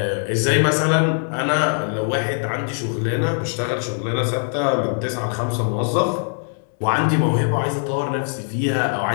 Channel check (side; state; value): right; silent; 56 dB below the other